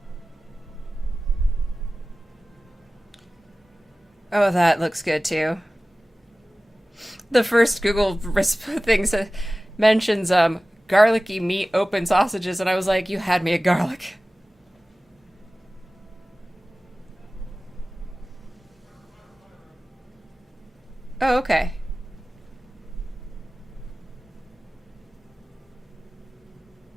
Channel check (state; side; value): normal; both; correlation 0.96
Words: Oh, that looks good too. The first Google thing mentions garlicky meat open sausages, and I was like, you had me at garlic. Oh, okay.